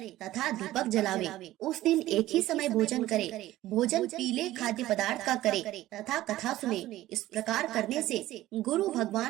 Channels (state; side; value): quieter; left; 15.4 dB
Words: तथा दीपक जलावे। उस दिन एक ही समय भोजन करे। भोजन पीले खाद्य पदार्थ का करे तथा कथा सुने। इस प्रकार करने से गुरु